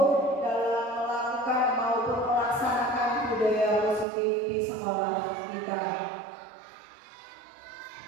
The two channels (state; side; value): drops out; left; at 4.0 s